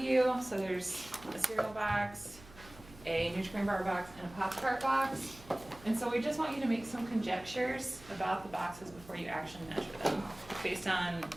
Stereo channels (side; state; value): right; noise; hum, 20 dB below the sound